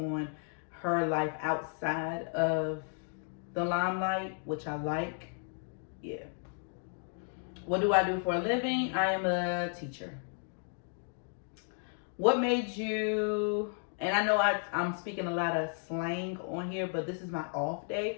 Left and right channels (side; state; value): right; silent; 55 dB below the other